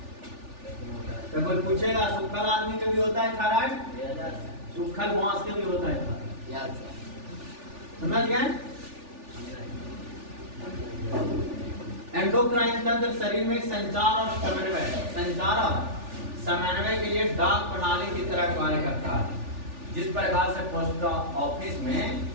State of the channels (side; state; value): left; late; 3.4 ms